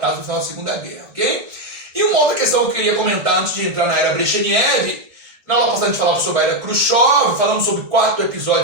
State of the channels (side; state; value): left; late; 1.7 ms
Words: do final da Segunda Guerra. Okay? E uma outra questão que eu queria comentar antes de entrar na era Brezhnev. Na aula passada a gente falava sobre a era Khrushchev, falamos sobre 4